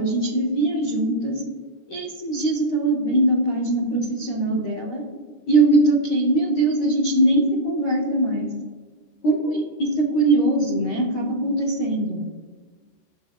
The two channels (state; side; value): late; right; 13 ms